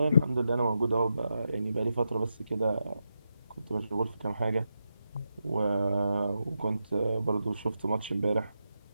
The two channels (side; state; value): both; inverted; correlation -0.86